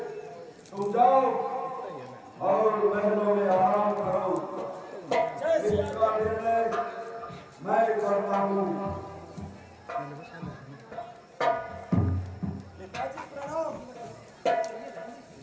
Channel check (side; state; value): both; identical; correlation 1.00